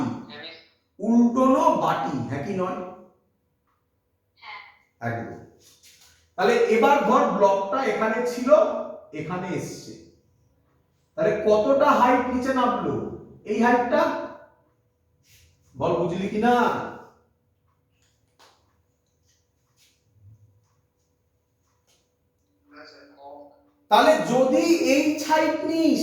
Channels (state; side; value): identical; both; correlation 1.00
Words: উল্টোনো বাটি, হ্যাঁ কি নয়? একদম। তাহলে এবার ধর ব্লকটা এখানে ছিল, এখানে এসছে, তাহলে কতটা হাইট নিচে নামলো? এই হাইটটা, বল বুঝলি কিনা? তাহলে যদি এই হাইট নিস,